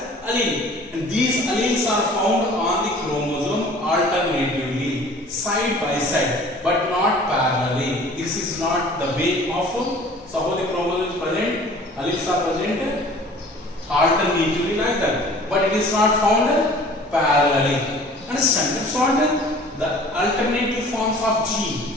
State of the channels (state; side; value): normal; both; correlation 0.48